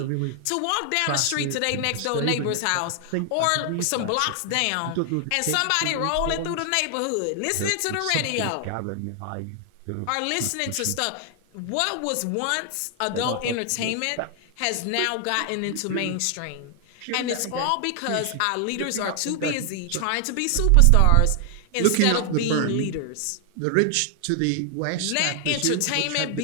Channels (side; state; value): both; different; correlation 0.00